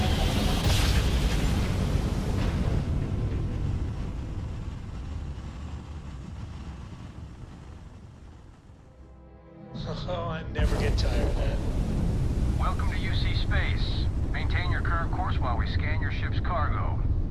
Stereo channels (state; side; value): identical; both; correlation 1.00